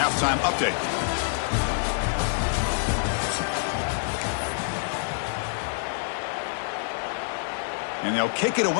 update. And they'll kick it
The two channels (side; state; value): right; silent; digital silence